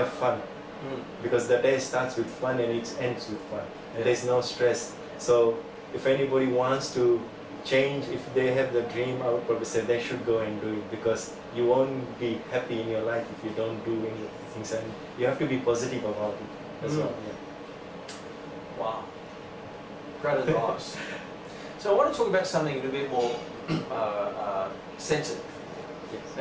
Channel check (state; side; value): identical; both; correlation 1.00